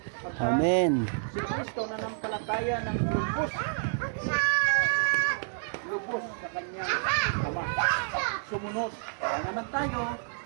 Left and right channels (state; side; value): silent; left; 58 dB below the other